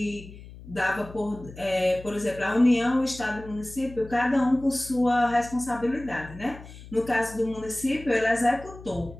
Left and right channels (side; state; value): left; noise; hum, 17 dB below the sound